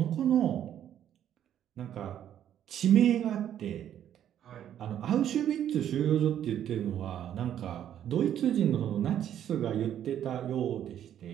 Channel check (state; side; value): quieter; left; 10.4 dB